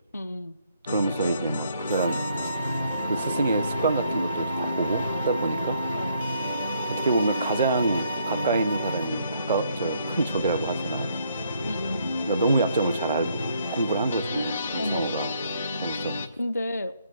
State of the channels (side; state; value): both; inverted; correlation -0.69